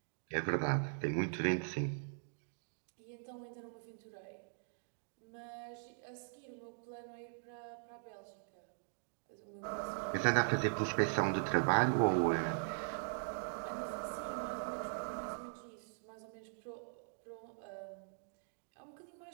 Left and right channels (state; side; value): silent; left; digital silence